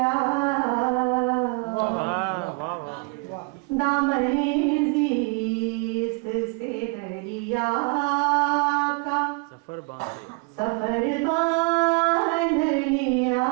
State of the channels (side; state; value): left; quieter; 30.5 dB